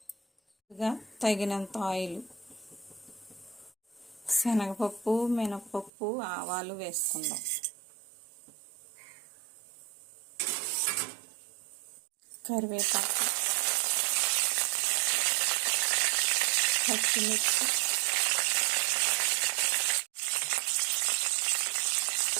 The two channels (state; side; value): drops out; left; at 5.9 s